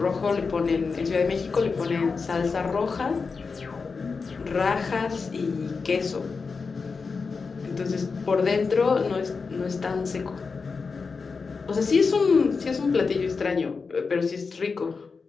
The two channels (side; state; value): right; quieter; 4.8 dB